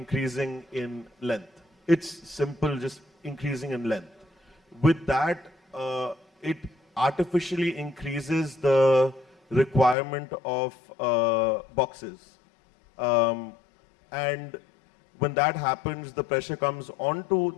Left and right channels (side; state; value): right; drops out; at 10.0 s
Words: in length. It's simple, just increasing in length. With that, it artificially increases the requirement of boxes. And when that happens, the pressure comes onto